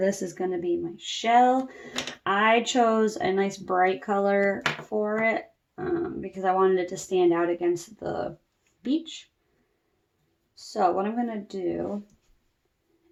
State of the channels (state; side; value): identical; both; correlation 1.00